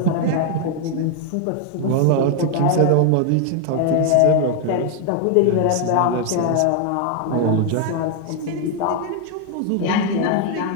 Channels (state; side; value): different; both; correlation 0.00